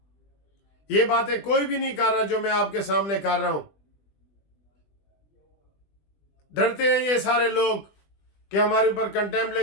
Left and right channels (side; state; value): right; late; 20 ms